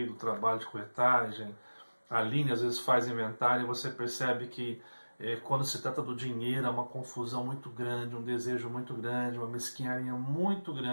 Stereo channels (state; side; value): inverted; both; correlation -1.00